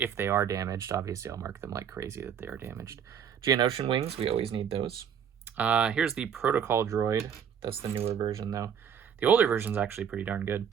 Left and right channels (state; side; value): quieter; left; 8.1 dB